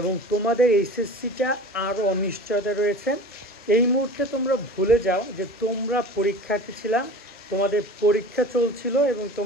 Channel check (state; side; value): normal; both; correlation 0.37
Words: তোমাদের এইচএসসিটা আরও অনিশ্চয়তা রয়েছে। এই মুহূর্তে তোমরা ভুলে যাও যে তোমরা পরীক্ষার্থী ছিলাম, তোমাদের পরীক্ষা চলছিল এবং